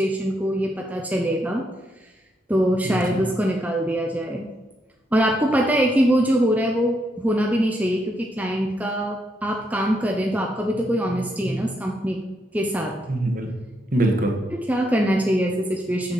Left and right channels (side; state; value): both; normal; correlation 0.78